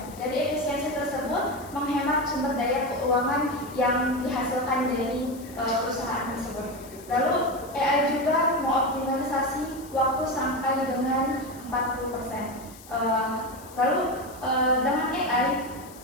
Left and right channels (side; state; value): left; noise; hiss, 20 dB below the sound